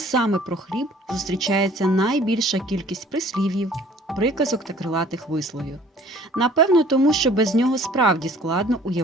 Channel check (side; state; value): both; normal; correlation 0.53